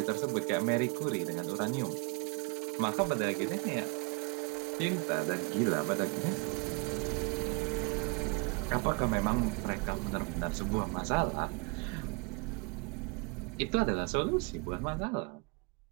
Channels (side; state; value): left; quieter; 29.8 dB